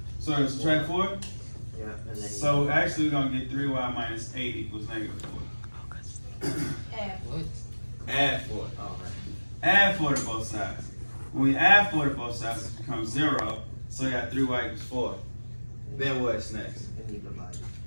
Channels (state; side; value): inverted; both; correlation -1.00